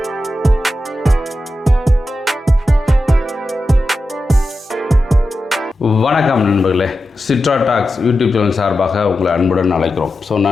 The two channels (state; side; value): normal; both; correlation 0.91